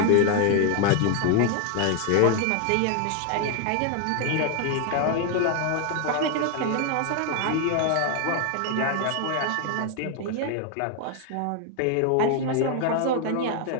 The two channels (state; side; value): different; both; correlation 0.00